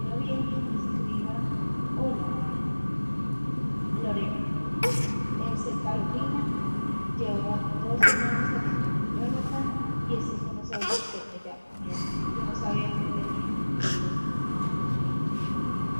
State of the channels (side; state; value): both; inverted; correlation -1.00